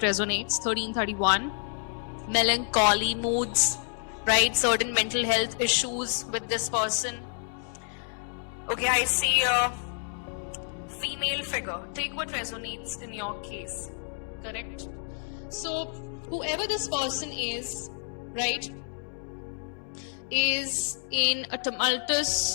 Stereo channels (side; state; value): right; silent; 56 dB below the other